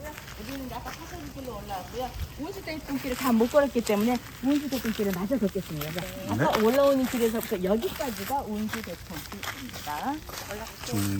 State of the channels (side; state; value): both; identical; correlation 1.00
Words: 우리는 아까 사설길로 올라왔고요. 운수대통길을 다 못 걸었기 때문에 운수대통길을 마저 걷겠습니다. 아까 올라오는 길에서부터 여기까지가 운수대통길입니다.